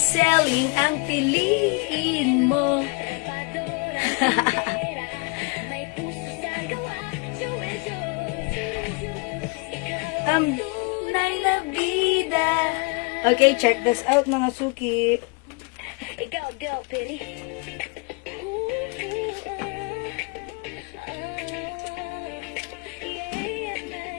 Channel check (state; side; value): quieter; right; 30.6 dB